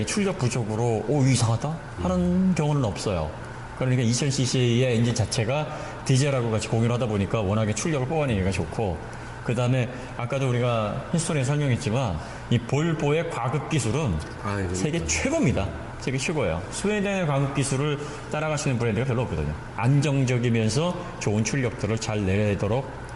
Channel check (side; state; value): both; identical; correlation 1.00